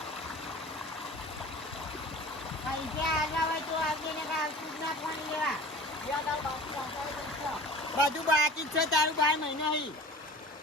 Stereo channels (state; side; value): normal; both; correlation 0.40